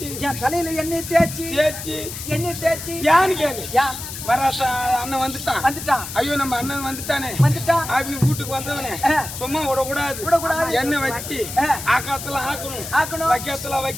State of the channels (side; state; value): left; noise; hiss, 9 dB below the sound